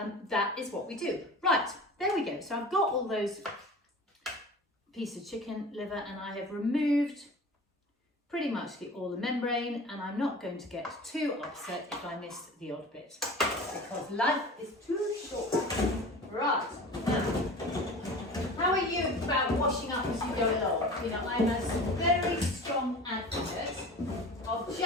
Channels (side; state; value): both; normal; correlation 0.37